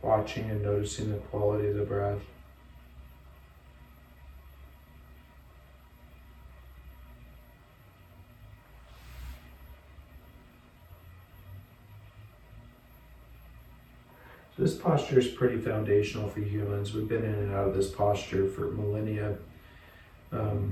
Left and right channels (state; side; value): identical; both; correlation 1.00